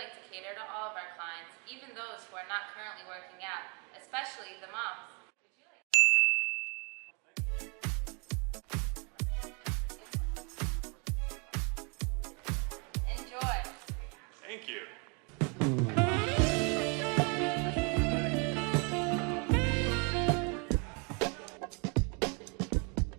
to cater to all of our clients, even those who are not currently working out, especially the moms. Enjoy. Thank you.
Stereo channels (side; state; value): left; quieter; 33.9 dB